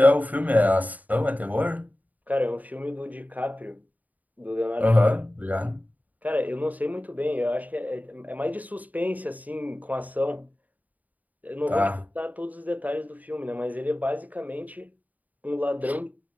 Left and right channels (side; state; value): left; late; 0.077 ms